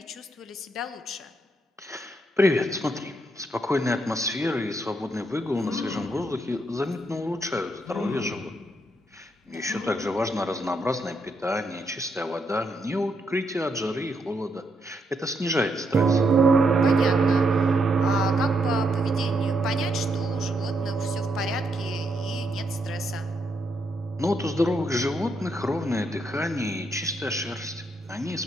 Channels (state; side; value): normal; both; correlation 0.78